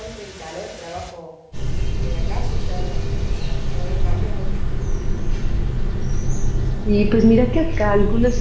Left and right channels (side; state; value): both; identical; correlation 1.00